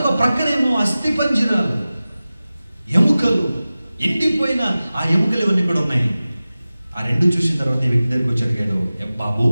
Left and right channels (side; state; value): both; inverted; correlation -0.96